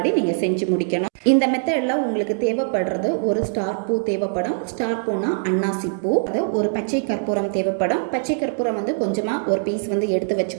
நீங்கள் செஞ்சு முடிக்கணும். இந்த மெத்தடில் உங்களுக்கு தேவைப்படுறது ஒரு ஸ்டார் பூ தேவைப்படும். ஸ்டார் பூனா அன்னாசி பூ. அது ஒரு பச்சை கற்பூரம் தேவைப்படும். பச்சை கற்பூரம் வந்து கொஞ்சமாக ஒரு பீஸ் வந்து எடுத்து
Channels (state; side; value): silent; left; digital silence